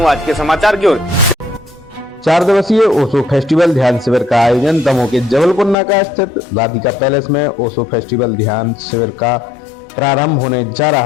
आज के समाचार की ओर। 4 दिवसीय ओशो फेस्टिवल ध्यान शिविर का आयोजन दमोह के जबलपुर नाका स्थित राधिका पैलेस में ओशो फेस्टिवल ध्यान शिविर का प्रारंभ होने जा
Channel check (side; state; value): right; drops out; at 5.8 s